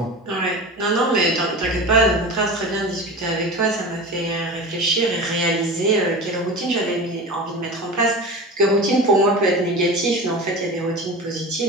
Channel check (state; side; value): normal; both; correlation 0.31